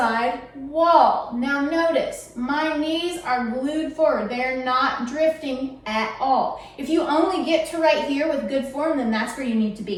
wall. Now notice, my knees are glued forward. They're not drifting at all. If you only get to right here with good form, then that's where you need to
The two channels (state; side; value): identical; both; correlation 1.00